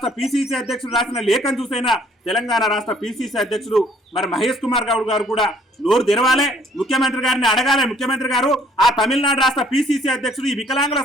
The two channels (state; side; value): normal; both; correlation 0.61